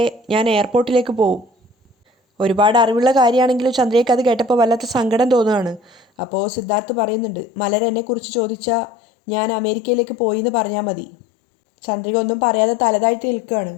ഞാൻ എയർപോർട്ടിലേക്ക് പോവും. ഒരുപാട് അറിവുള്ള കാര്യമാണെങ്കിലും ചന്ദ്രികയ്ക്ക് അത് കേട്ടപ്പോൾ വല്ലാത്ത സങ്കടം തോന്നുകയാണ്. അപ്പോൾ സിദ്ധാർത്ഥ് പറയുന്നുണ്ട്, മലർ എന്നെക്കുറിച്ച് ചോദിച്ചാൽ ഞാൻ അമേരിക്കയിലേക്ക് പോയി എന്ന് പറഞ്ഞാൽ മതി. ചന്ദ്രിക ഒന്നും പറയാതെ തലതാഴ്ത്തി നിൽക്കുകയാണ്.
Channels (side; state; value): right; drops out; at 6.1 s